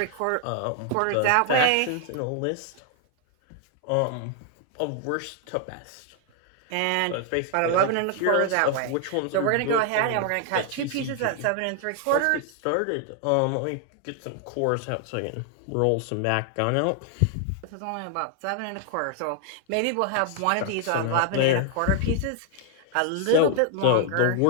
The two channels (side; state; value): both; different; correlation 0.00